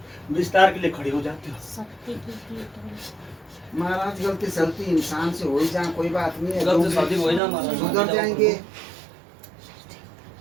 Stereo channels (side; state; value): left; drops out; at 7.4 s